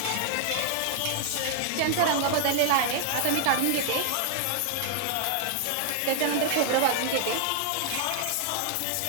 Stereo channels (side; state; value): both; different; correlation 0.00